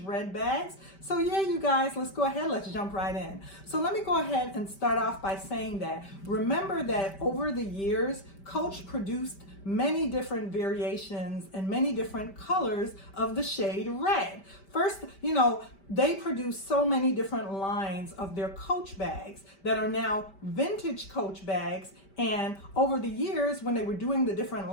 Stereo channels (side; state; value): right; late; 5.1 ms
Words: red bags. So yeah, you guys, let's go ahead, let's jump right in. So let me go ahead and start off by saying that, remember that over the years, Coach produced many different variations and many different colors of the shade red. First, they produce so many different lines of their Coach bags that are now vintage Coach bags. And over the years, when they were doing the different